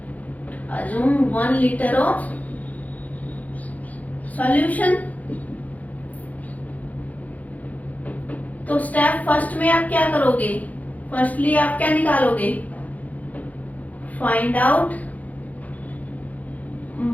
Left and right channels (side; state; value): right; late; 0.076 ms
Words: Assume 1 litre of solution. तो स्टेप फर्स्ट में आप क्या करोगे? फर्स्टली आप क्या निकालोगे? Find out